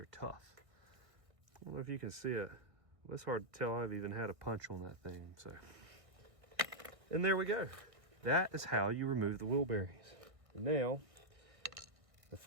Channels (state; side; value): late; left; 1.6 ms